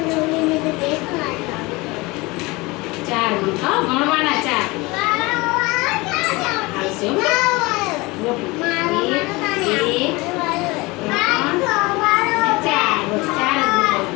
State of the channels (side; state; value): right; quieter; 23.4 dB